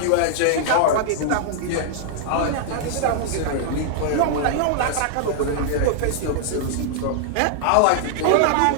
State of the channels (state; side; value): different; both; correlation -0.01